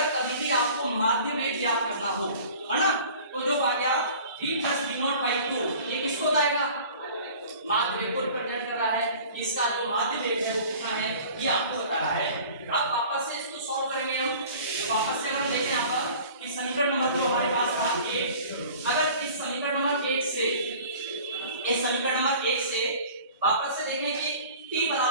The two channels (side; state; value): both; inverted; correlation -0.45